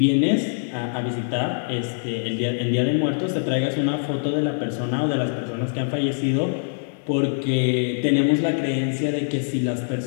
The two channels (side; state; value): right; silent; digital silence